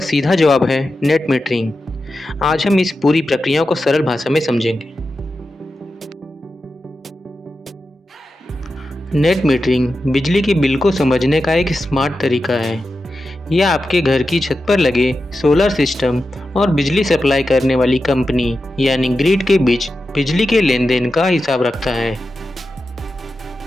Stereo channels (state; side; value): normal; both; correlation 0.91